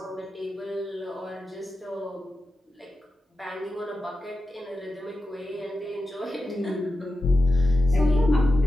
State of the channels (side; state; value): both; normal; correlation 0.91